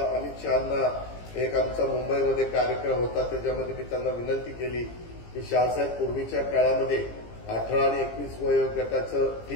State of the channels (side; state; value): right; late; 17 ms